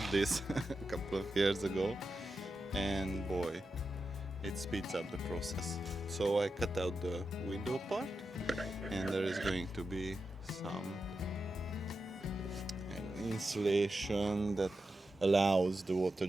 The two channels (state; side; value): normal; both; correlation 0.89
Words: this a couple of years ago, and boy, it speeds up the process. So I cut out the window part, and there is going to be some insulation that allows the water